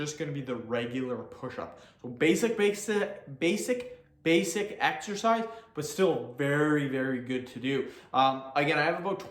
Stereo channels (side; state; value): both; identical; correlation 1.00